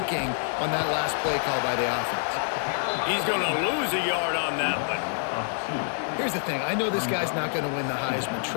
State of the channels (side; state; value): right; silent; digital silence